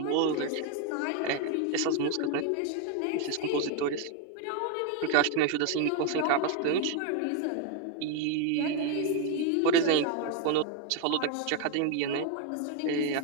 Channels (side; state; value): both; different; correlation 0.01